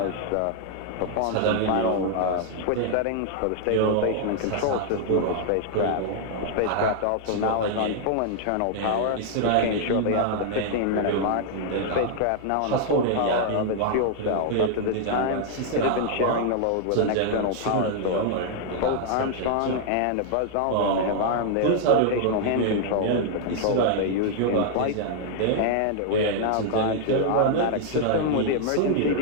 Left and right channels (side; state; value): both; different; correlation 0.00